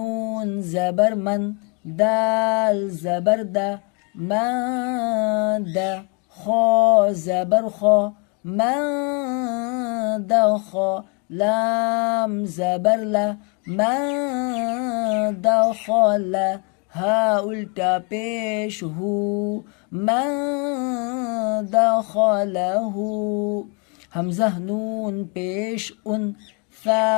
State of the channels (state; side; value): quieter; right; 34.7 dB